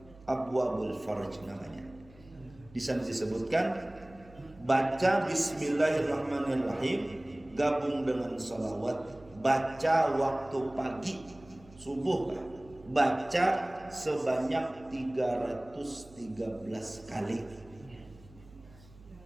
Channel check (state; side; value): noise; right; hum, 23 dB below the sound